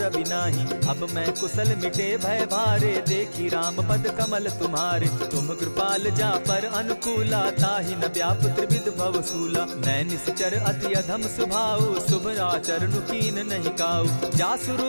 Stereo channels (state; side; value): inverted; both; correlation -1.00